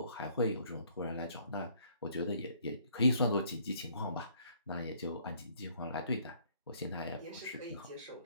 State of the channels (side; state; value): both; inverted; correlation -0.62